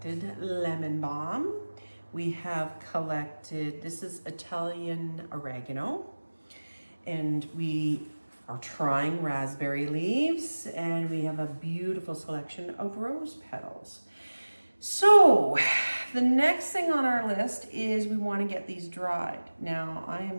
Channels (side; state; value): both; inverted; correlation -1.00